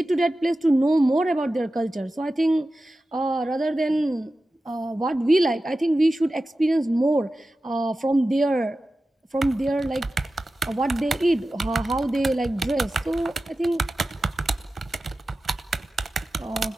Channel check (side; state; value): both; normal; correlation 0.94